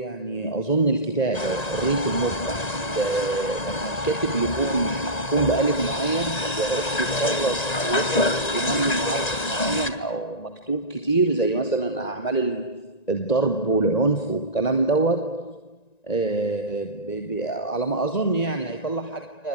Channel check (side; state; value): right; late; 1.9 ms